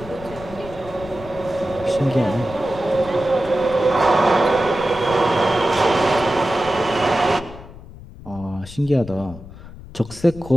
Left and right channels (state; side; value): noise; left; rumble, 17 dB below the sound